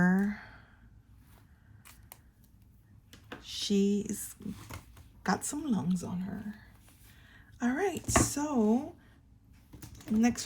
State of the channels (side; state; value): both; identical; correlation 1.00